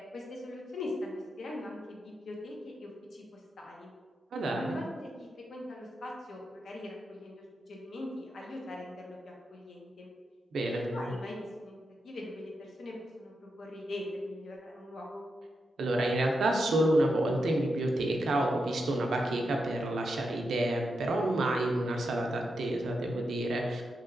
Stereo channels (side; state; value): both; normal; correlation 0.86